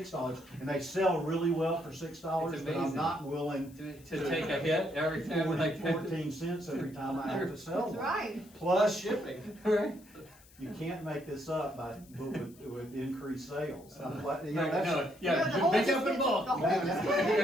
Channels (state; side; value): noise; left; hiss, 25 dB below the sound